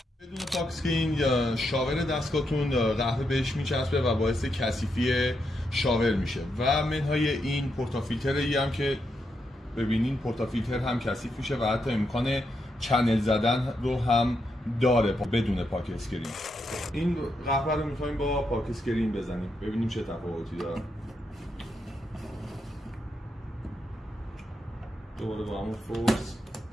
بدون پاک اسکرین یا شاور دستگاهتون قهوه بهش میچسبه و باعث کثیفی شاور میشه و منهای این پورتافیلتری هم که ببینین پورتافیلتر هم کثیف میشه و حتی امکان چنل زدن رو هم داره بدون پاک اسکرین. این قهوه رو میخوایم با پاک اسکرین بزنیم ببینیم چه تفاوتی داره. دوباره با همون فورس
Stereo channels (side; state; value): both; normal; correlation 0.82